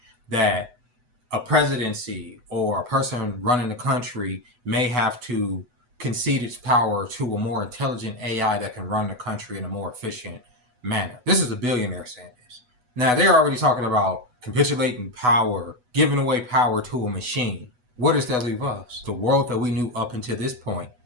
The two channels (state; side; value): late; left; 8.1 ms